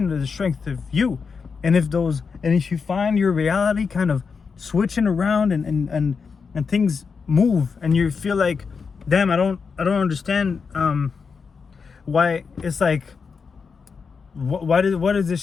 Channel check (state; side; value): quieter; right; 5.4 dB